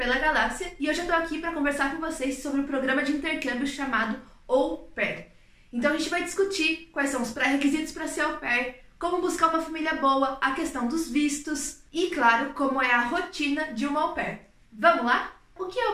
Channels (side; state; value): both; identical; correlation 1.00